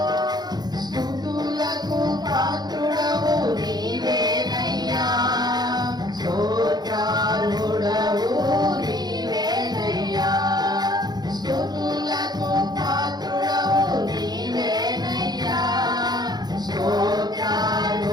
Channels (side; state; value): left; late; 0.20 ms